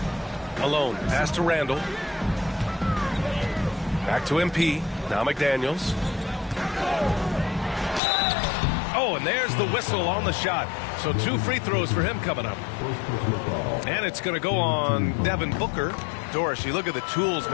Alone, pass to Randall. Back to MP. Now McDaniels. Oh, and there's the whistle on the shot. So 2 free throws for him coming up. And it's going to go on Devin Booker. Doris, you look at the tools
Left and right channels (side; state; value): right; drops out; at 8.0 s